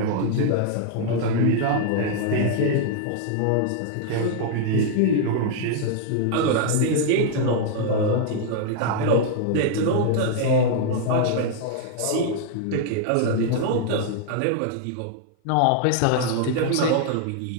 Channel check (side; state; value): both; different; correlation 0.00